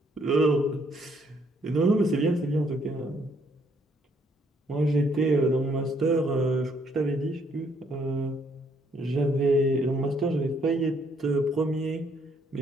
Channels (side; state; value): both; normal; correlation 0.68